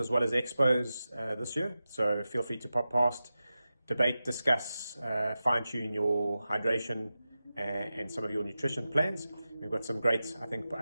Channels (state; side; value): inverted; both; correlation -0.93